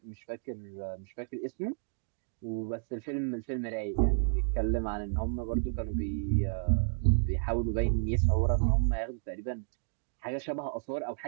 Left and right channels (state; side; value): silent; left; digital silence